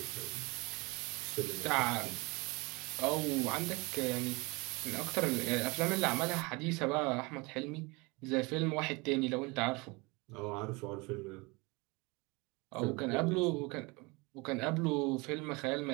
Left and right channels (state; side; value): quieter; left; 26.5 dB